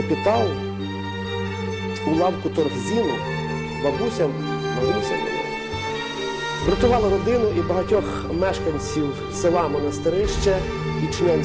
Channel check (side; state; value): both; identical; correlation 1.00